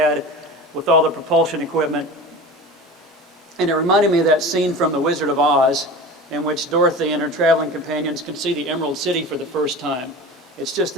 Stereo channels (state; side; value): normal; both; correlation 0.33